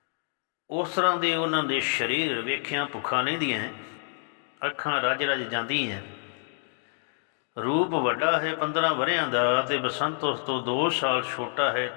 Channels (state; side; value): silent; right; 56 dB below the other